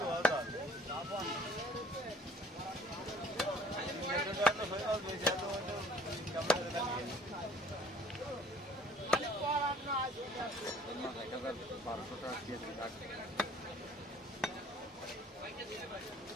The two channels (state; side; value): normal; both; correlation 0.54